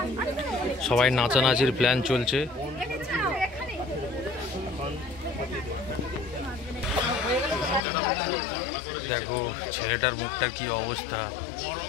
সবাই নাচানাচির প্ল্যান চলছে। দেখো ছেলেটার মুখটার কি অবস্থা।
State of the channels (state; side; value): drops out; right; at 7.8 s